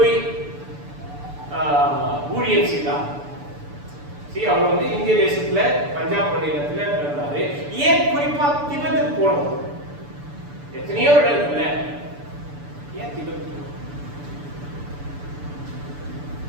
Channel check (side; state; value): left; late; 6.9 ms